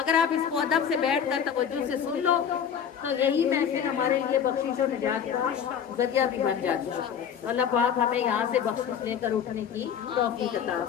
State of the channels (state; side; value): quieter; right; 8.1 dB